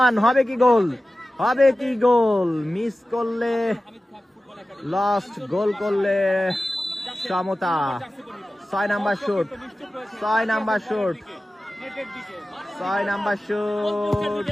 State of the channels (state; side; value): normal; both; correlation 0.95